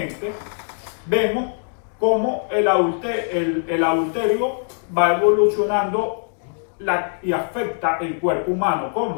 vemos cómo el adulterio va evolucionando y afecta el cuerpo humano.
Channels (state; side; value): silent; right; digital silence